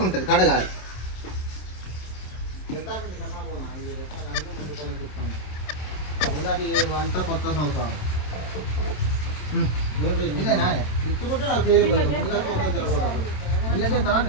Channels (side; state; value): right; late; 27 ms